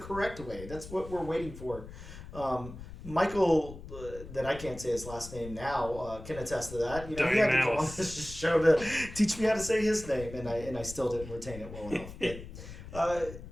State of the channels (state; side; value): noise; left; rumble, 13 dB below the sound